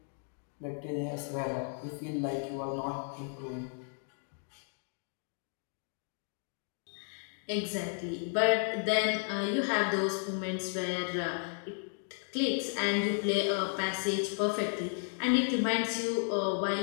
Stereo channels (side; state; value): right; silent; 55 dB below the other